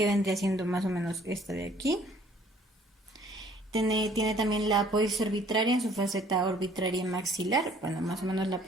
vendría siendo más o menos esta de aquí. Tiene también la apófisis orbitaria en su faceta orbitaria maxilar. Bueno, más o menos la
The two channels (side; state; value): both; normal; correlation 0.58